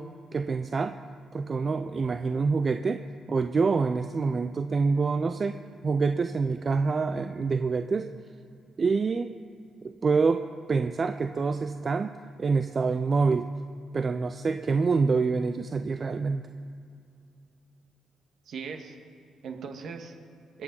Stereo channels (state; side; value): quieter; left; 4.2 dB